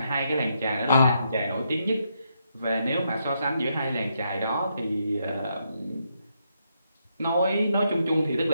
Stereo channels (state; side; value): inverted; both; correlation -0.79